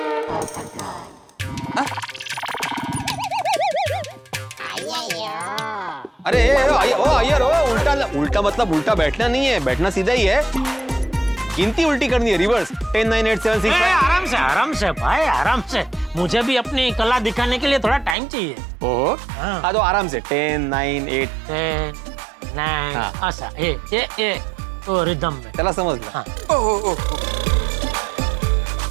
अरे अय्यर उल्टा उल्टा मतलब उल्टा बैठना नहीं है, बैठना सीधा ही है। गिनती उल्टी करनी है, रिवर्स। 10 9 8 7 6 5। आराम से भाई, आराम से। मुझे भी अपनी कला दिखाने के लिए थोड़ा टाइम चाहिए। ओहो, हाँ तो आराम से 10 9 8 10 9 ऐसा ए ओ रिदम में। चला समझ लो। हाँ।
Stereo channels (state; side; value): drops out; left; at 18.2 s